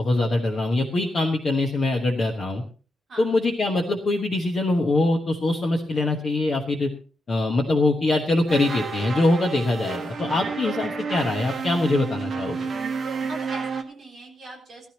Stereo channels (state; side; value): normal; both; correlation 0.85